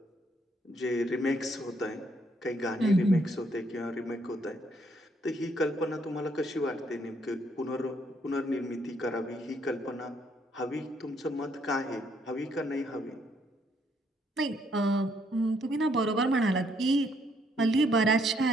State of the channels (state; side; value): normal; both; correlation 0.70